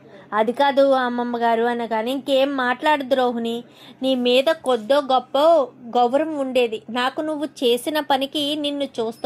అది కాదు అమ్మమ్మ గారు అనగానే, ఇంకేం మాట్లాడదు రోహిణి, నీ మీద కొద్దో గొప్ప గౌరవం ఉండేది, నాకు నువ్వు చేసిన పనికి నిన్ను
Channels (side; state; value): both; identical; correlation 1.00